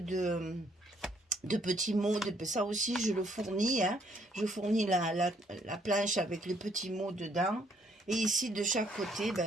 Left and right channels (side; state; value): both; normal; correlation 0.67